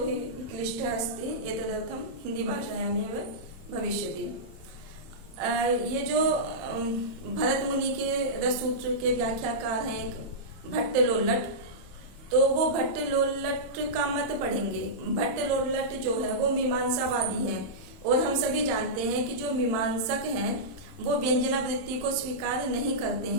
क्लिष्टः अस्ति, एतदर्थं हिंदी भाषायामेव भविष्यति। ये जो भरत मुनि के रससूत्र के व्याख्याकार हैं एक भट्टलोल्लट, तो वो भट्टलोल्लट का मत पढ़ेंगे। भट्टलोल्लट जो है वो मीमांसावादी हैं और हम सभी जानते हैं कि जो मीमांसक हैं वो व्यंजनावृत्ति को स्वीकार नहीं करते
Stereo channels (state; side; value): late; left; 31 ms